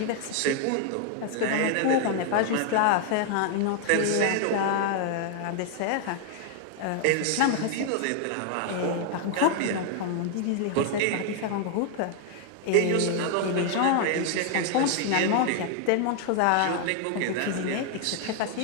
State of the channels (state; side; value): different; both; correlation 0.00